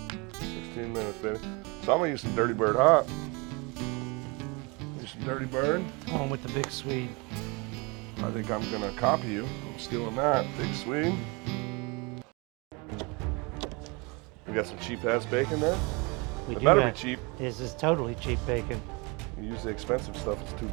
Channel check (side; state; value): left; quieter; 28.6 dB